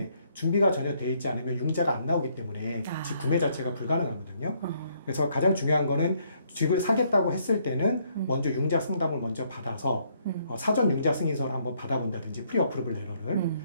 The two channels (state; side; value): inverted; both; correlation -0.70